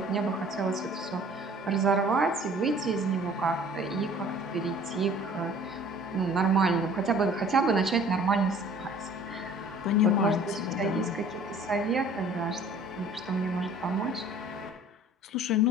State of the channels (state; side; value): normal; both; correlation 0.50